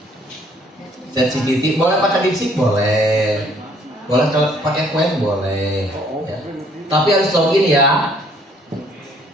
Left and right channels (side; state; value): both; normal; correlation 0.62